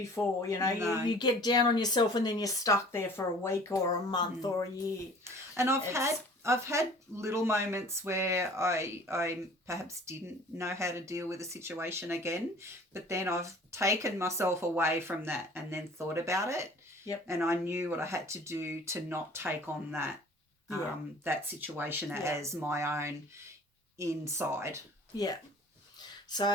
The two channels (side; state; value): both; normal; correlation 0.48